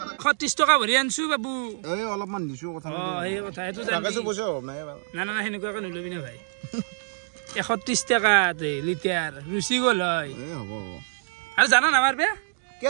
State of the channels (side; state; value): left; silent; digital silence